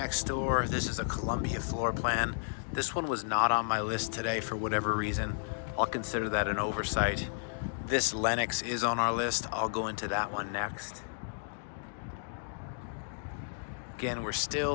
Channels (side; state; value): right; silent; digital silence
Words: door. This is a Columbia floor plan. This one was not on my list today for whatever reason. I'll consider that an oversight. This Lennox is on our list. I'll go into that one next. Again, we're